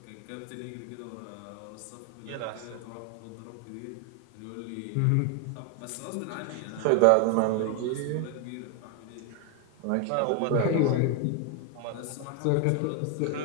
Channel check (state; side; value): different; both; correlation 0.00